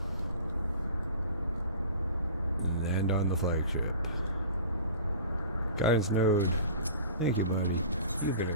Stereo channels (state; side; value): inverted; both; correlation -0.40